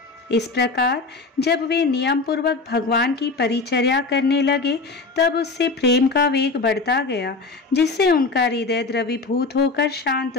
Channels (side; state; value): right; quieter; 3.9 dB